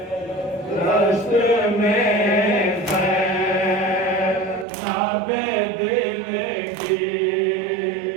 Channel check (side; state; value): left; drops out; at 4.7 s